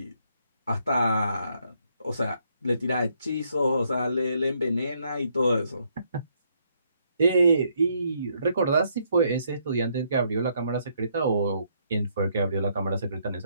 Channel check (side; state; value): both; inverted; correlation -0.72